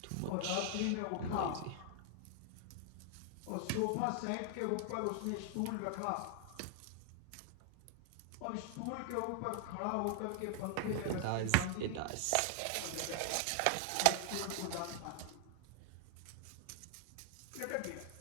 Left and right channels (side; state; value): both; different; correlation -0.01